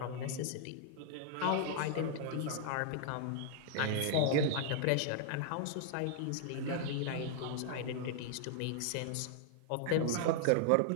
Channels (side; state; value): both; different; correlation -0.01